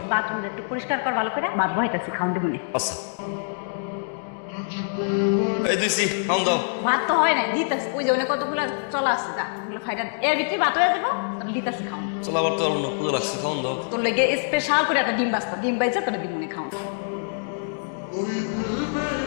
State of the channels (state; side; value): silent; right; digital silence